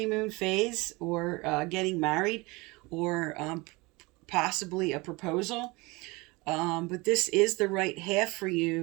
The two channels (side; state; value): left; quieter; 24.5 dB